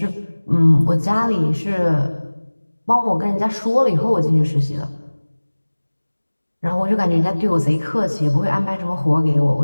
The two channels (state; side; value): inverted; both; correlation -1.00